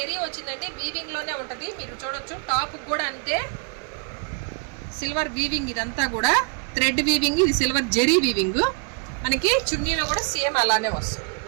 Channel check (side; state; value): left; quieter; 37.1 dB